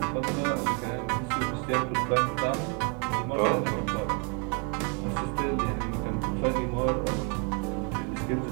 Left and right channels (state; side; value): quieter; left; 36.0 dB